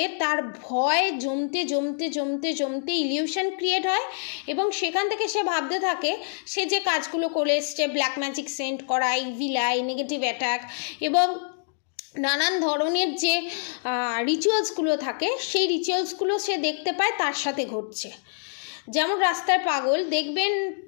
তার ভয় জমতে জমতে জমতে জমতে ইলিউশন ক্রিয়েট হয় এবং সেখান থেকে সে ভাবতে থাকে সে যে কাজগুলো করে এসছে, ব্ল্যাক ম্যাজিক সেন্ড করা, ইভিল আই, নেগেটিভ অ্যাটাক এবং নানান ধরনের যে রিচুয়ালসগুলো থাকে সেই রিচুয়ালসগুলো সে দেখতে পায় তার সাথে ঘটছে। যেমন রাস্তায়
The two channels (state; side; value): silent; right; digital silence